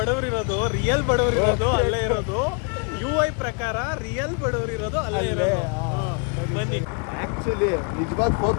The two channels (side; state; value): right; quieter; 37.0 dB